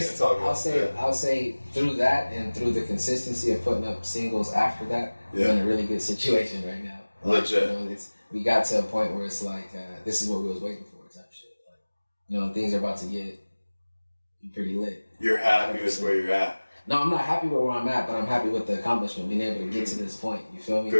talk about. I'll say through that and through the consistency of putting up singles after that, we're in a really good situation right now. Like, legit. You know, we got to a point where it's like, this is what we was waiting for, type shit. Like, you know, things are about to get pretty lit. You're happy 100%. With where you're at. No, I'm not happy with where I'm at, but I'm happy with the accomplishment, being able to get to this point. You feel me?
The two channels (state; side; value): inverted; both; correlation -1.00